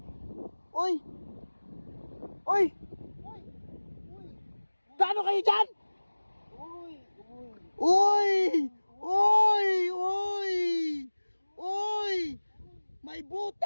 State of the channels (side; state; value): both; inverted; correlation -1.00